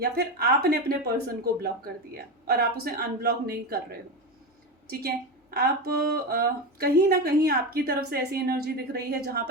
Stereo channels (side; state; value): both; normal; correlation 0.18